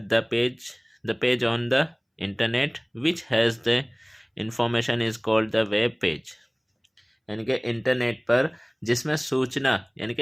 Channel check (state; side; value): identical; both; correlation 1.00